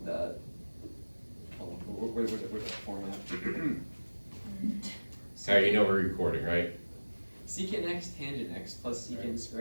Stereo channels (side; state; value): both; inverted; correlation -1.00